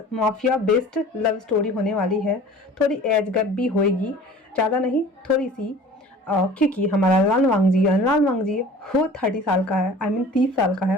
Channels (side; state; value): both; normal; correlation 0.45